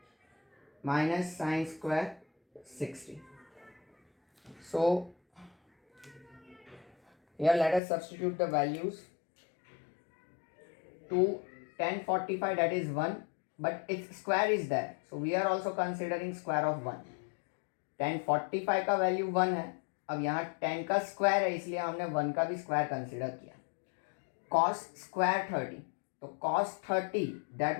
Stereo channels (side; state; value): right; drops out; at 7.8 s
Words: minus sin square 60. So here let us substitute the values. 2 tan 45, that is 1, but its square is there, so we are also considering square of 1. tan 45 का value 1 है, अब यहाँ tan का स्क्वायर है इसलिए हमने 1 का भी स्क्वायर कंसिडर किया. cos square 30, तो cos 30 that